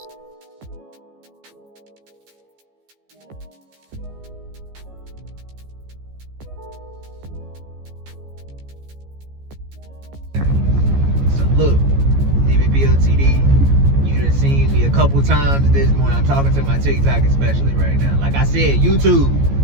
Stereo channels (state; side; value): late; left; 14 ms